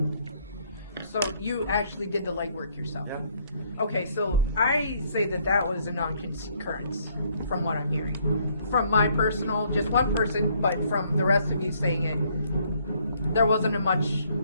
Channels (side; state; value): both; inverted; correlation -0.67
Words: So you actually did the legwork yourself. Yeah. Okay, so I say that was a non-concurrence from what I'm hearing. From my personal, just one person, but from the rest of you saying it, there wasn't much